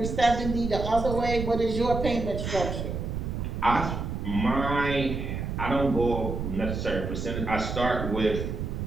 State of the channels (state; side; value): noise; right; rumble, 4 dB below the sound